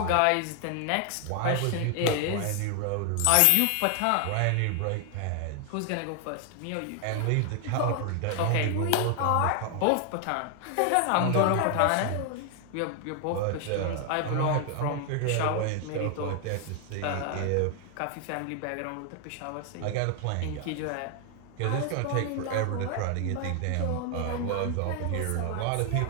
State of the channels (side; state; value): both; different; correlation 0.00